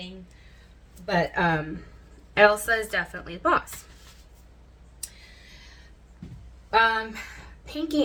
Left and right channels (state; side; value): identical; both; correlation 1.00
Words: But Elsa is definitely the boss.